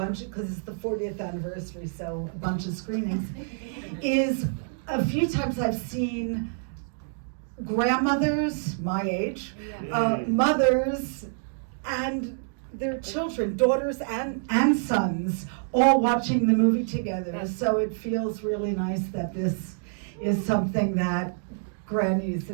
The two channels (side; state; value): left; silent; digital silence